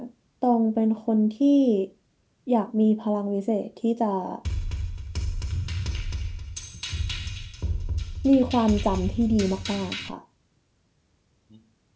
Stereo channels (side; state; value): both; identical; correlation 1.00